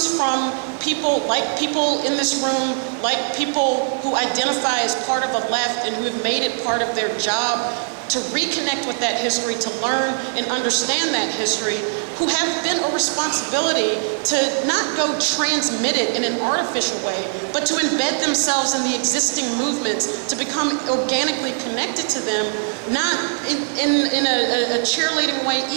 from people in this room, like people who identify as part of a left and who have made it part of their job to reconnect with that history, to learn and understand that history, who have then a responsibility to not go transmit it in an artificial way, but to embed themselves in the existing movements, to become organically connected to them, not in a cheerleading way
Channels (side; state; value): left; silent; digital silence